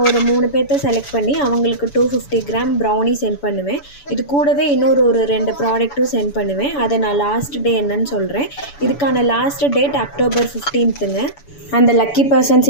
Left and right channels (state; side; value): late; right; 7.0 ms